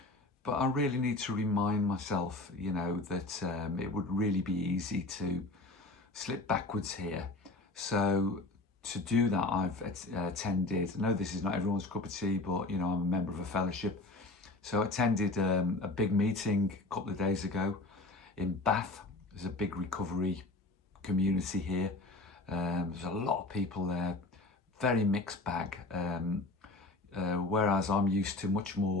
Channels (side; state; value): right; quieter; 3.1 dB